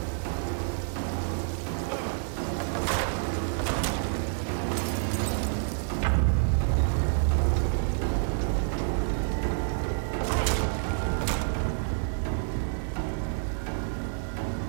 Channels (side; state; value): left; silent; 59 dB below the other